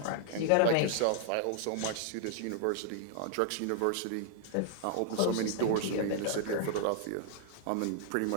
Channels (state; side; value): different; both; correlation 0.00